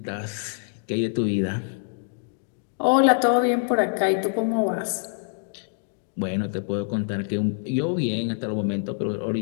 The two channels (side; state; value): right; silent; digital silence